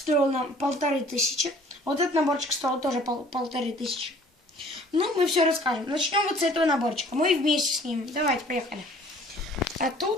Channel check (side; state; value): both; normal; correlation 0.53